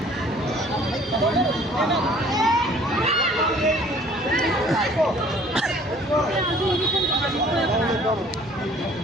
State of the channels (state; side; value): normal; both; correlation 0.54